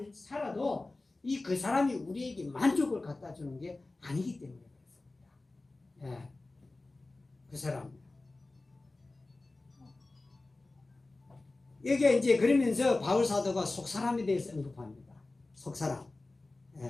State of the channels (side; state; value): right; quieter; 3.1 dB